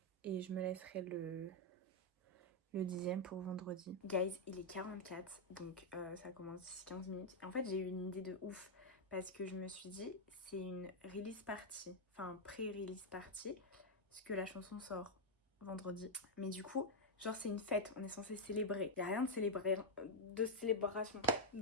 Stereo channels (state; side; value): normal; both; correlation -0.01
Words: Et je me laisserai le 10e pour vendredi. Guys, il est 44, donc ça commence d'ici 15 minutes. Et en fait, j'ai eu une idée de ouf parce que je me suis dit, c'est une release party, enfin pré-release party, parce que la chanson sort vendredi. Mais du coup, genre c'est une fête, on est censé célébrer. Il n'y a rien de célébration